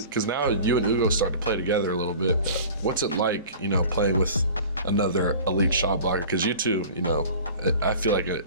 Because now you and Ugo start to play together a little bit. What's it like, playing with another elite shot blocker? Because you two, I feel like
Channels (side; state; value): both; inverted; correlation -0.41